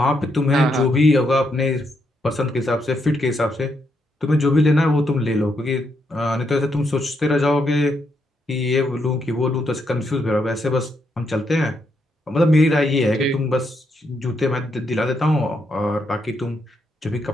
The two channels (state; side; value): normal; both; correlation 0.79